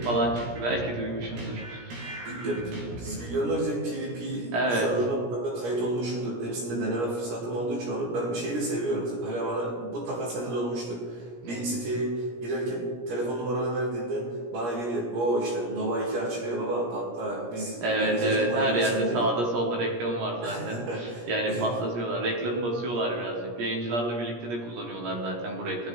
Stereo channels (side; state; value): left; late; 17 ms